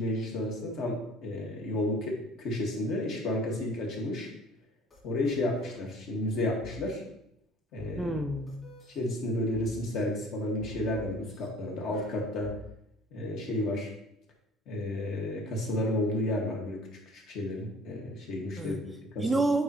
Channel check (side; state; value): both; normal; correlation 0.51